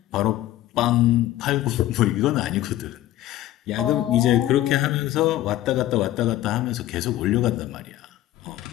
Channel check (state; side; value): quieter; right; 14.3 dB